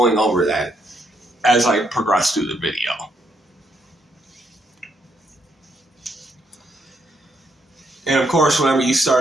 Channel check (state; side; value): normal; both; correlation 0.75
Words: over that as I progress through the video. And of course, whenever you